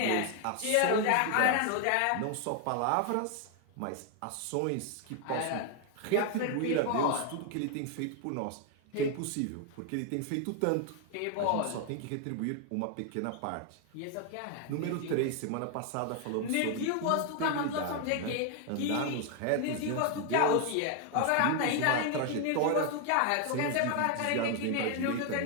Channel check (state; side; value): different; both; correlation 0.00